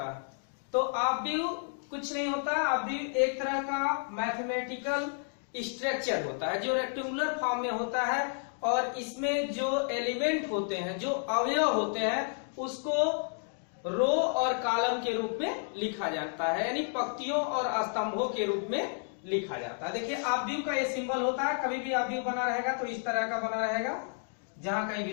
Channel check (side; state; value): right; silent; 57 dB below the other